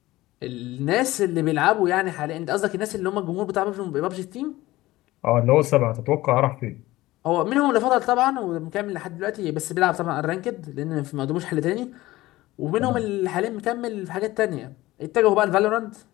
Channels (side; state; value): right; quieter; 17.8 dB